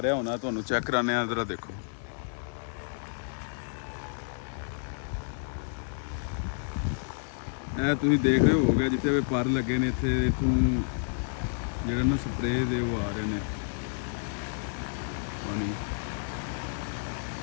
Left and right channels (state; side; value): silent; right; 58 dB below the other